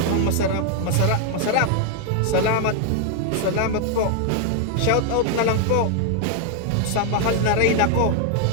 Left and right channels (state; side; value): different; both; correlation 0.00